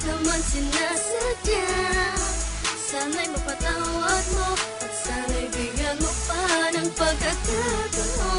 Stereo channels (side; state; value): both; identical; correlation 1.00